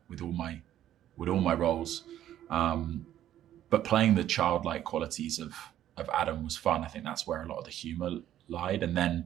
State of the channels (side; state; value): left; quieter; 11.9 dB